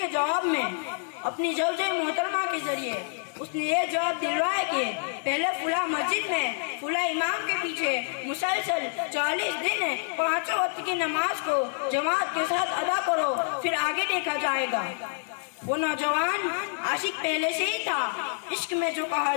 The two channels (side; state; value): right; silent; digital silence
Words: جواب میں اپنی زوجہ محترمہ کے ذریعے اس نے یہ جواب دلوایا کہ پہلے فلاں مسجد میں فلاں امام کے پیچھے مسلسل 40 دن 5 وقت کی نماز کو جماعت کے ساتھ ادا کرو، پھر آگے دیکھا جائے گا۔ وہ نوجوان عاشق پہلے سے ہی تھا، عشق میں جو کہا